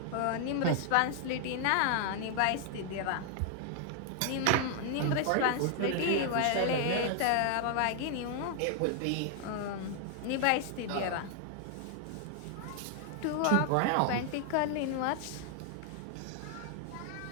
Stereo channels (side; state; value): both; different; correlation 0.00